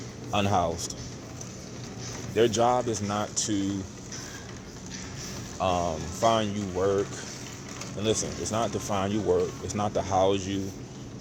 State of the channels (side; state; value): both; identical; correlation 1.00